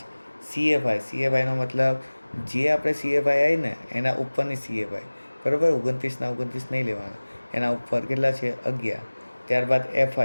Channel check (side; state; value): both; inverted; correlation -1.00